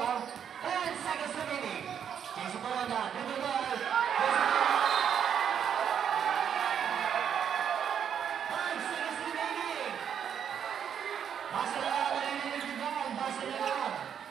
10 seconds remaining. Jason Corona, dribble ball. Jason Corona. 5 seconds remaining. Basa na lang, narinig yung ball. Basa na lang.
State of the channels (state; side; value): quieter; left; 8.3 dB